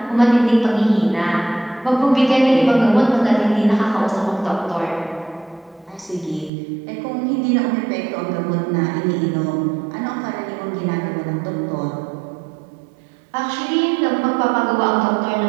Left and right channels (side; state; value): left; drops out; at 6.5 s